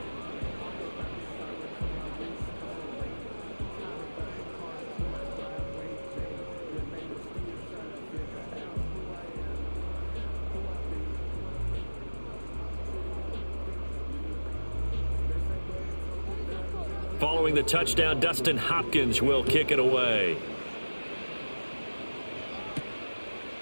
Following the touchdown, Dustin Hopkins will kick it away.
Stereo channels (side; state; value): both; inverted; correlation -1.00